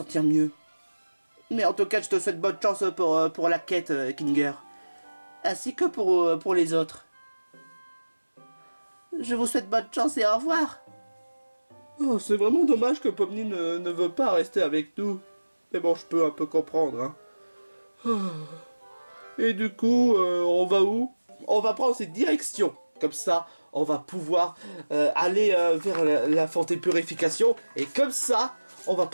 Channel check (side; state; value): both; inverted; correlation -1.00